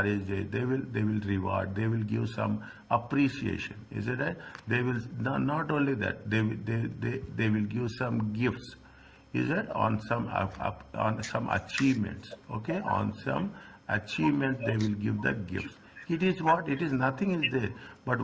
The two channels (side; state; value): both; identical; correlation 1.00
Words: day. They will reward. They will give some appreciation. Is it right? They will not only that. They will give some gifts. Is it on some on some achievements? Okay, on some achievements they will give the gifts. It is what it is. Nothing is there. But